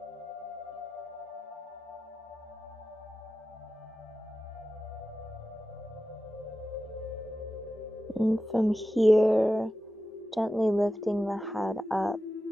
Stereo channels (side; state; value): both; normal; correlation 0.93